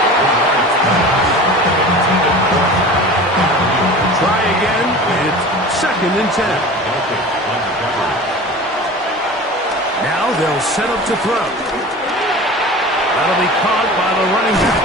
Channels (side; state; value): both; normal; correlation 0.37